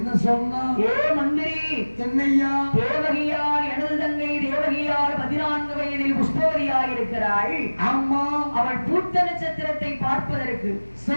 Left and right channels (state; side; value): inverted; both; correlation -1.00